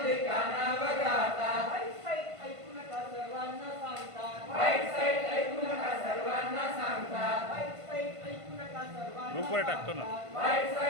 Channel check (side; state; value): left; late; 1.5 ms